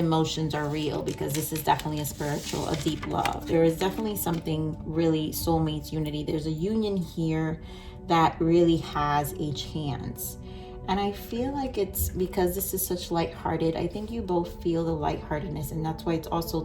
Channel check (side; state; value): both; identical; correlation 1.00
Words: are real, because this is definitely a deep love. There is definitely something really soulmates, unity. There's a union here that really has a chance. And I feel like it's because this is such lighthearted. I think you both feel the lightheartedness, and that's why it's also